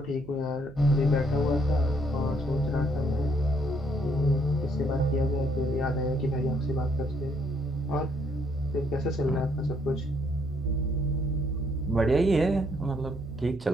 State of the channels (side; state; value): right; noise; hum, 19 dB below the sound